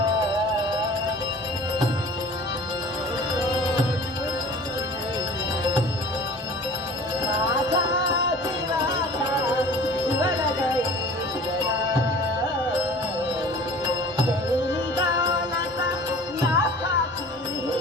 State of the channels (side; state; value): both; normal; correlation 0.44